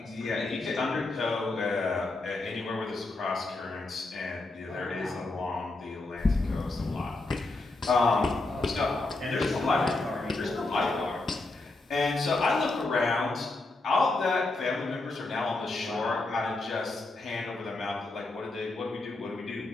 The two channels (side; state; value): right; quieter; 3.1 dB